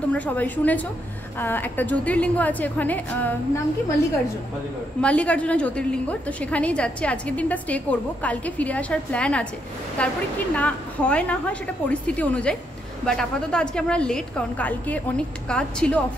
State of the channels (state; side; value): normal; both; correlation 0.77